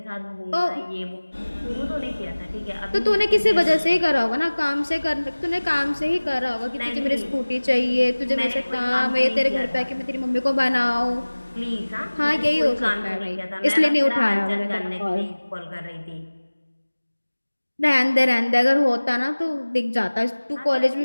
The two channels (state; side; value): inverted; both; correlation -1.00